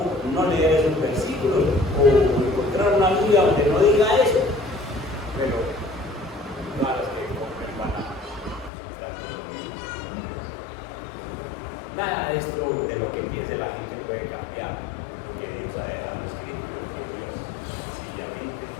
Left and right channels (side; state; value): right; drops out; at 8.7 s